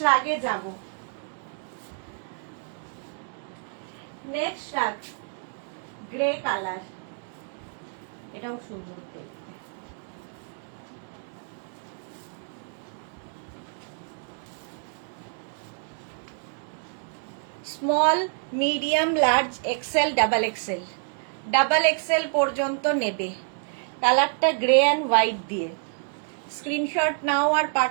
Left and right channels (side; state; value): left; silent; 60 dB below the other